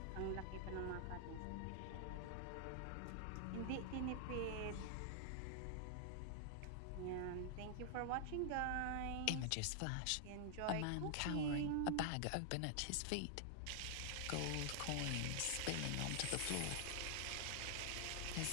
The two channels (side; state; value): both; different; correlation -0.01